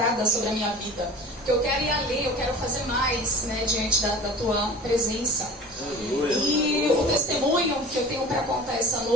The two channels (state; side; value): normal; both; correlation 0.39